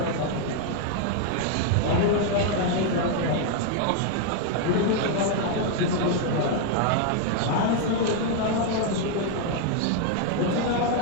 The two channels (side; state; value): both; different; correlation 0.00